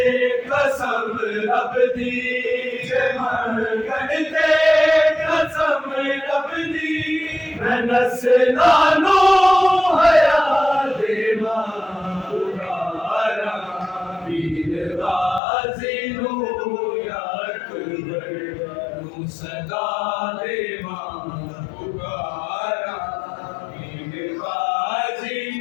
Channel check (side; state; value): right; drops out; at 15.4 s